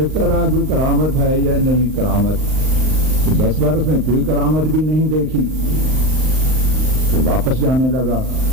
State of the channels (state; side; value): late; left; 39 ms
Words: رہا کوئی کرامت ہے یا نہیں کرامت، تو 10 برس میں کوئی کرامت بھی نہیں دیکھی، تو واپس جانے لگا۔